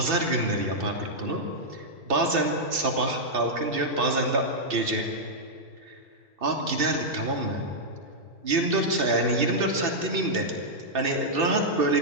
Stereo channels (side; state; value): left; late; 2.7 ms